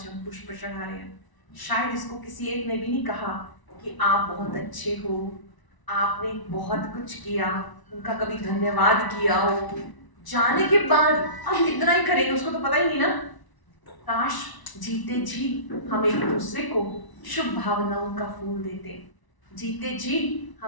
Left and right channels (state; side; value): late; right; 1.0 ms